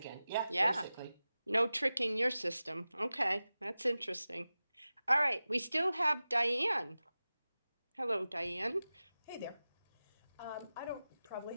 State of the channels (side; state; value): both; inverted; correlation -0.95